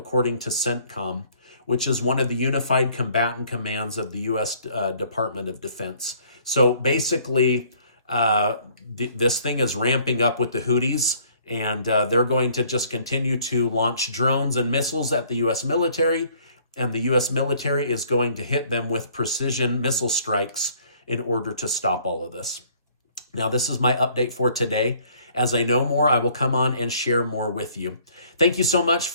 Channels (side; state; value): both; inverted; correlation -0.59